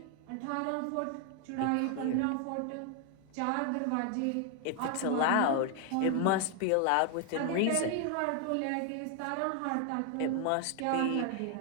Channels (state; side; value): different; both; correlation 0.00